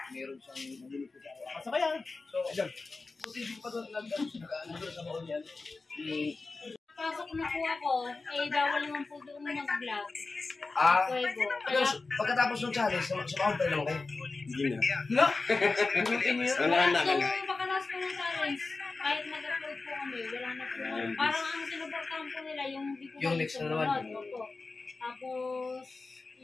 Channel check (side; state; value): right; quieter; 3.8 dB